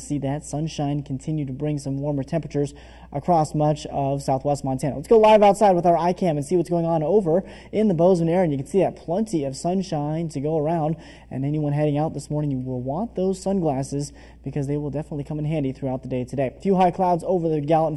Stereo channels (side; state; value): both; identical; correlation 1.00